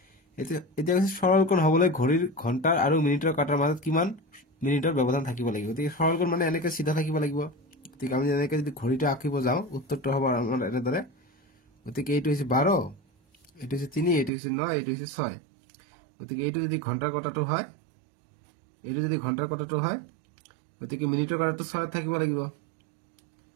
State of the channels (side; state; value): left; drops out; at 14.3 s